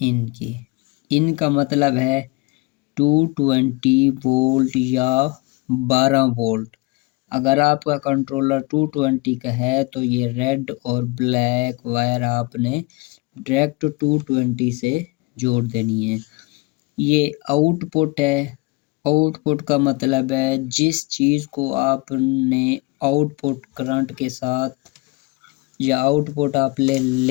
کی۔ ان کا مطلب ہے 220 وولٹ یا 12 وولٹ۔ اگر آپ کا کنٹرولر 220 کا ہے تو یہ ریڈ اور بلیک وائر آپ نے ڈائریکٹ 220 سے جوڑ دینی ہے۔ یہ آؤٹ پٹ ہے، آؤٹ پٹ کا مطلب ہے جس چیز کو آپ نے آؤٹ پٹ کرنٹ کے ساتھ یا آؤٹ پٹ آپ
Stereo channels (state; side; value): quieter; right; 25.3 dB